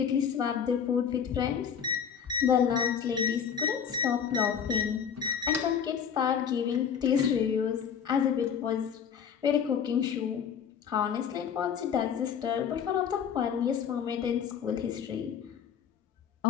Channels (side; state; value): right; quieter; 7.8 dB